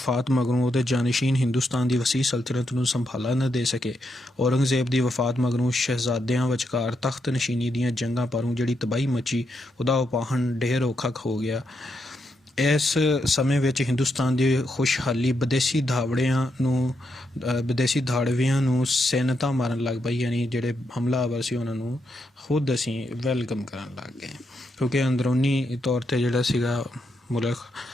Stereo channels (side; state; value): both; normal; correlation 0.81